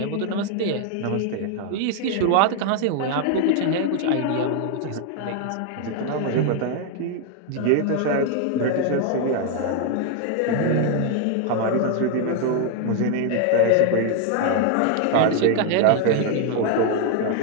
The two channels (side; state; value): both; different; correlation 0.00